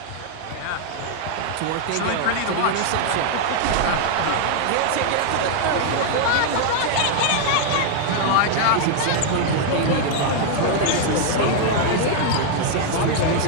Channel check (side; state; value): both; different; correlation 0.00